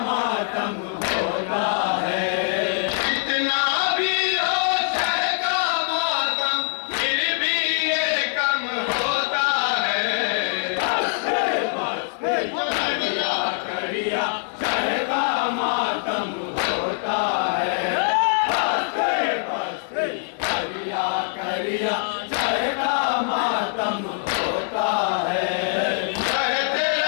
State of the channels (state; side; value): silent; right; 59 dB below the other